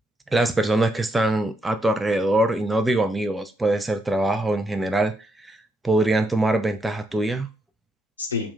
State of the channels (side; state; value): both; normal; correlation 0.79